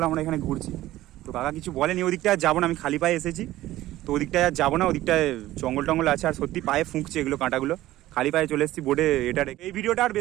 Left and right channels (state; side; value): quieter; left; 15.5 dB